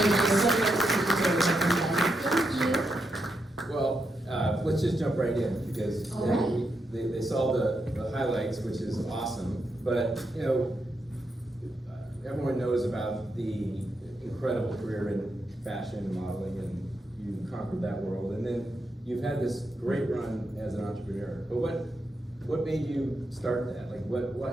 you. Well, let's just jump right in because All right. they saw the highlights, which is awesome. But everyone knows about the incredible career in fashion and modeling, and you conquered that world. And then you've had this great run as an entrepreneur. But what made you start that? Like,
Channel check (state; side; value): normal; both; correlation 0.83